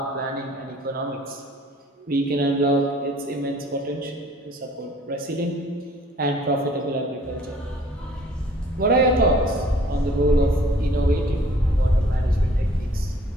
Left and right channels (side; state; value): both; normal; correlation 0.55